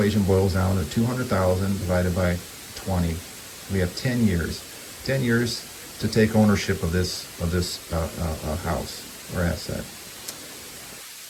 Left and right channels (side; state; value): both; identical; correlation 1.00